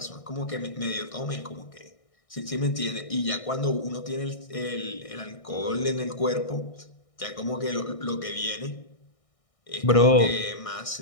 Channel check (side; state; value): right; late; 1.6 ms